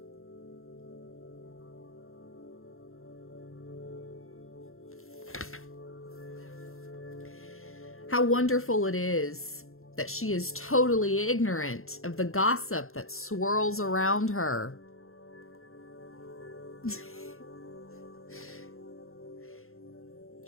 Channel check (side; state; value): right; late; 0.61 ms